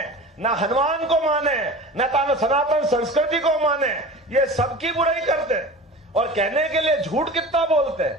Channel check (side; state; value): both; normal; correlation 0.36